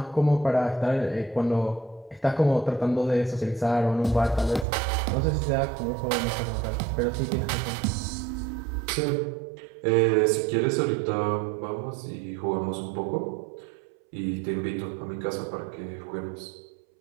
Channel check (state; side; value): drops out; left; at 4.7 s